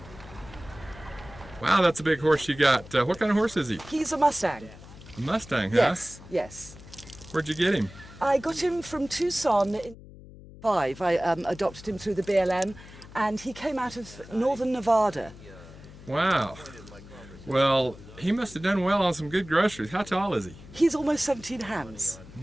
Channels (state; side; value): noise; left; hum, 18 dB below the sound